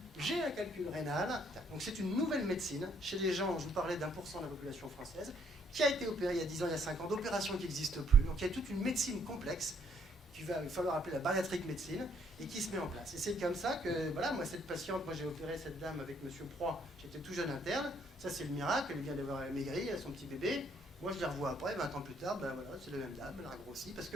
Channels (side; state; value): both; normal; correlation 0.67